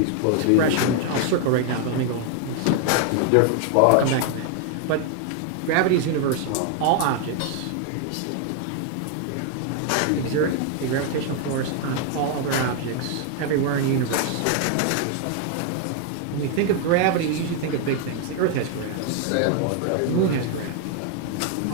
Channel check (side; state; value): both; different; correlation 0.00